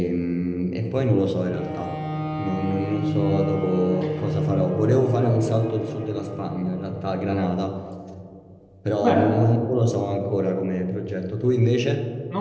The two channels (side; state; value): both; identical; correlation 1.00